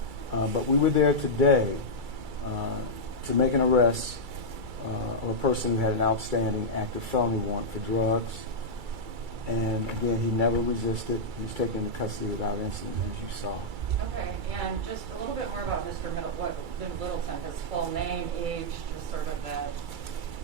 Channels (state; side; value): late; left; 2.3 ms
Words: But we were there today to make an arrest of a person who had an outstanding active felony warrant for drugs. And again, he never resisted. He was taken into custody without incident, as you saw. Okay, and just a little bit more about Mr. Littleton, his full name, age, just sort of that.